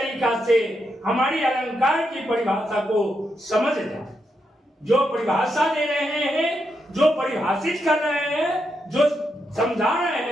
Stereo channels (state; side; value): normal; both; correlation 0.83